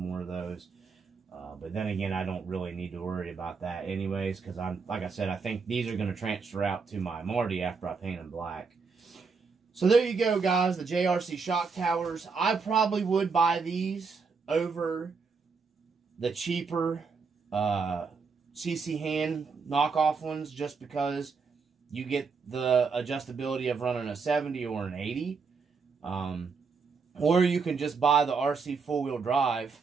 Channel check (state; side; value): quieter; left; 5.0 dB